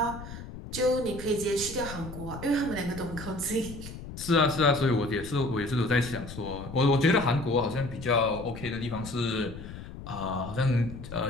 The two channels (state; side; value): noise; left; rumble, 12 dB below the sound